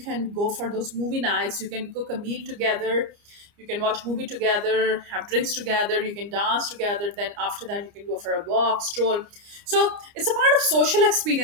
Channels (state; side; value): late; left; 29 ms